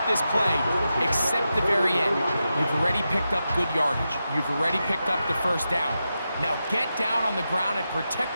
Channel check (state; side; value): inverted; both; correlation -0.89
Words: this play except the very end. You've already picked up good yardage. You've already picked up the first down. Now get down on the ground and